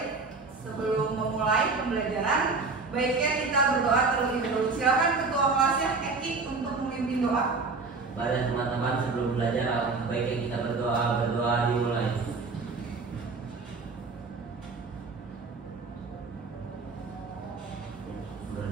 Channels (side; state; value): left; quieter; 4.1 dB